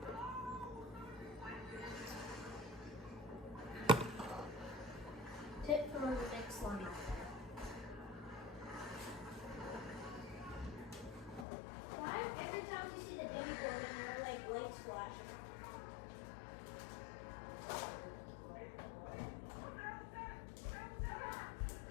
Tip for the next slime. Why every time you see the baby board and there are like lights flashing?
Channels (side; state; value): right; drops out; at 11.5 s